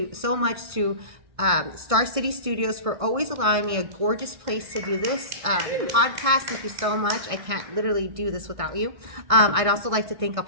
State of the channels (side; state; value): left; late; 1.6 ms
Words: so much to Star City Studios for always allowing me a gorgeous place to do this podcast. Thank you so much. I can't literally do this without you. I'd also like to thank El